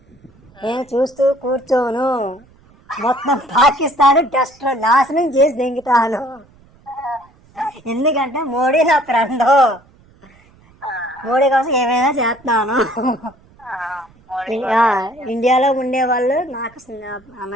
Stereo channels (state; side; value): noise; right; rumble, 29 dB below the sound